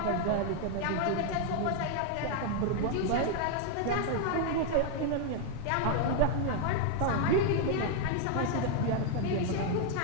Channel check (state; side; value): different; both; correlation 0.00